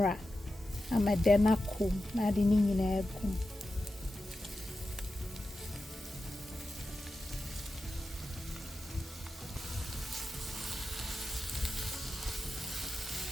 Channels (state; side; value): normal; both; correlation 0.91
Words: amadena kum na de ni nyina egum.